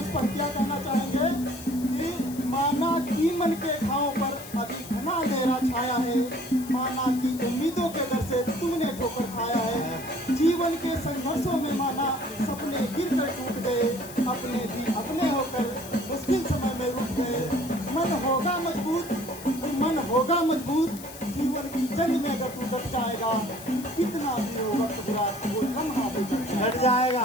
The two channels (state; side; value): noise; left; hiss, 15 dB below the sound